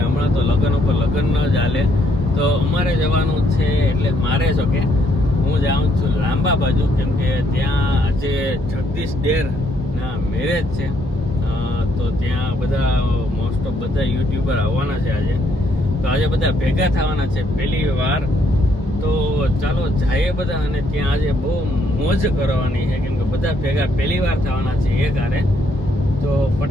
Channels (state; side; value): normal; both; correlation 0.71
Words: હમણાં તો લગ્ન ઉપર લગ્ન ન જ હાલે, તો અમારે જવાનું છે. એટલે મારે જો કે હું જાઉં છું લાંબા બાજુ, કેમ કે ત્યાં આજે જગદીશ ડેર ના મેરેજ છે. તો ત્યાં બધા મોસ્ટ ઓફ બધા યુટ્યુબર આવવાના છે આજે. તો આજે બધા ભેગા થવાના છે પહેલી વાર. તો ચાલો જઈએ બધા, અને ત્યાં આજે બહુ મોજ કરવાની છે, કેમ કે બધા ભેગા પહેલી વાર થવાના છે એક હારે. તો